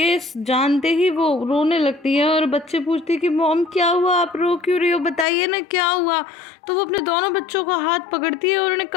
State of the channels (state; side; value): drops out; right; at 5.2 s